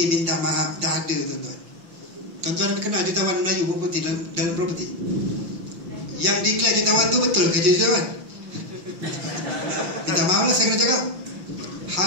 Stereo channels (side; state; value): left; late; 5.6 ms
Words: minta maaf, tak ada, tuan-tuan. Tuan-tuan kenal jutawan Melayu property dalam property? Yang declare jutawan tu betul ke jutawan? Minta maaf lah saya kena cakap.